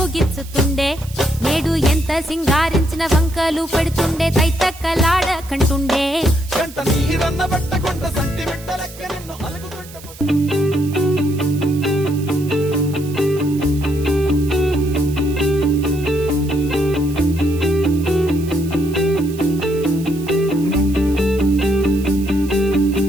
గిచ్చుతుండే నేడు ఎంత సింగారించిన వంకలు పెడుతుండే తైతక్కలాడ కంటుండే కంట నీరన్న పట్టకుండా సంటి బిడ్డ లెక్క నిన్ను అలుగుతుంటే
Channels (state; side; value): noise; right; hiss, 18 dB below the sound